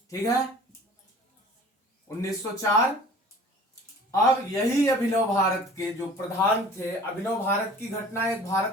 ठीक है, 1904। अब यही अभिनव भारत के जो प्रधान थे, अभिनव भारत की घटना, एक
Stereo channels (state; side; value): normal; both; correlation 0.46